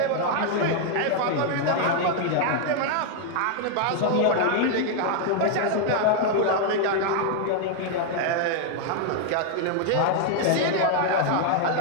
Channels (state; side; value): different; both; correlation 0.00